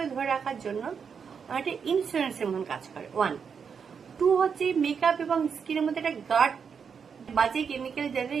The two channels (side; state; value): left; quieter; 6.5 dB